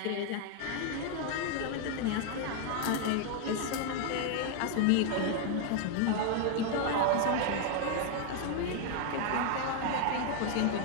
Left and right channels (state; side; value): different; both; correlation 0.00